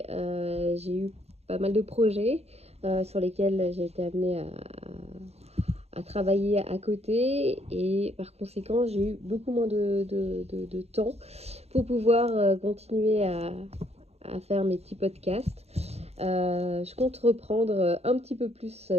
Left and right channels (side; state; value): left; late; 0.30 ms